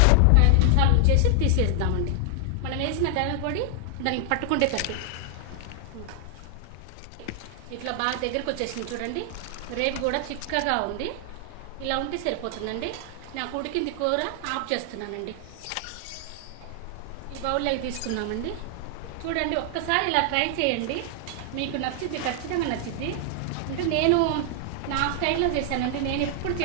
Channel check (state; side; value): different; both; correlation 0.00